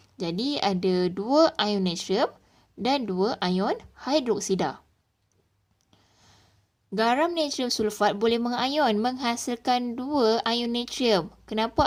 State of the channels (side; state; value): both; identical; correlation 1.00